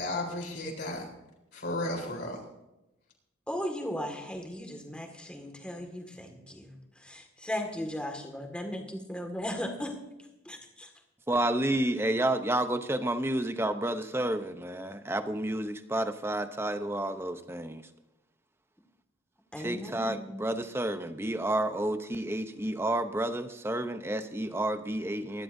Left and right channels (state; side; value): normal; both; correlation 0.70